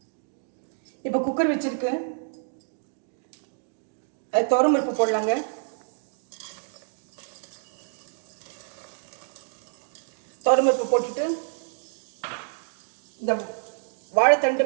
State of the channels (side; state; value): left; silent; digital silence